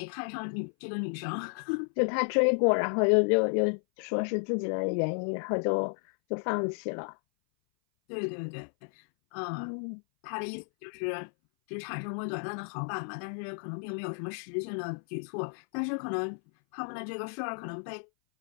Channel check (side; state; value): right; silent; 57 dB below the other